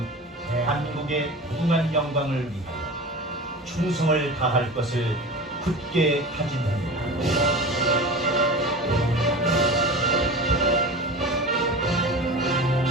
대한민국의 무궁한 영광을 위하여 충성을 다할 것을 굳게 다짐합니다.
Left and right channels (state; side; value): normal; both; correlation 0.33